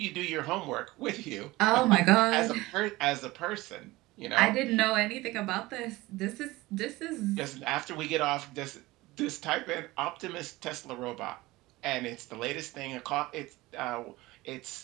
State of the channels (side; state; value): left; quieter; 19.7 dB